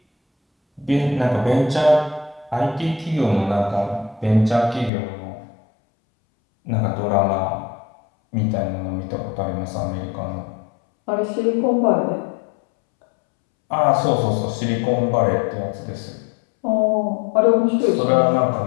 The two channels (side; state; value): right; drops out; at 4.9 s